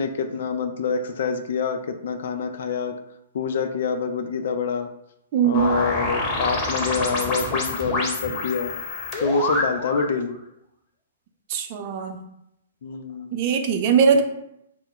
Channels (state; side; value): inverted; both; correlation -0.43